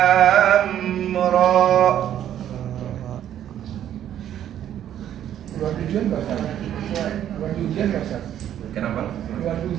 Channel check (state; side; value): quieter; left; 10.8 dB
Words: ra. Buat ujian nggak Ustaz? Buat ujian nggak Ustaz? Kenapa? Buat